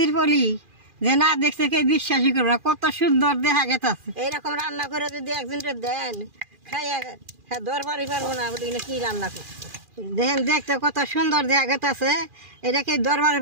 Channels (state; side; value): late; left; 2.4 ms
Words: পলি যে না দেখছে কে বিশ্বাসই করবে না, কত সুন্দর দেখা গেছে। এইরকম রান্না করে যদি একজনকে দেন খাইয়া হ্যাঁ দরবারই পারবো না বলি কি রান্না করছে দেখেন, দেখতে কত সুন্দর দেখা গেছে। এটাকে দরবারে